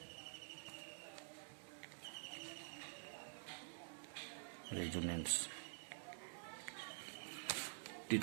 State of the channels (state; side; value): silent; left; digital silence